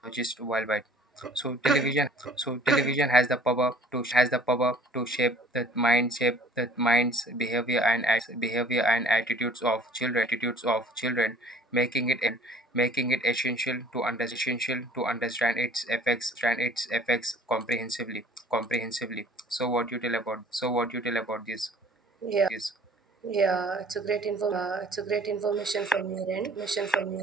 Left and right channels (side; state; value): both; normal; correlation 0.52